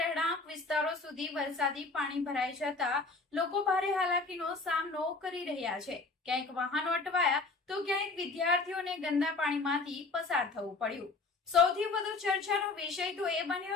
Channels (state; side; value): quieter; right; 3.8 dB